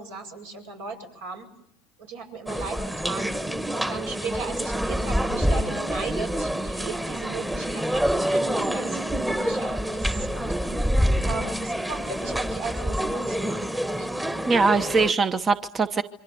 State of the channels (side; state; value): both; normal; correlation 0.89